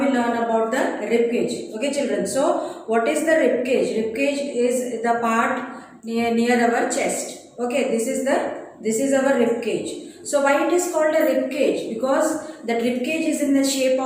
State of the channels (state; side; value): identical; both; correlation 1.00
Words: learn about the rib cage. Okay children, so what is the rib cage? Rib cage is the part near our chest. Okay, this is our rib cage. So why it is called a rib cage? Because the rib cage is in the shape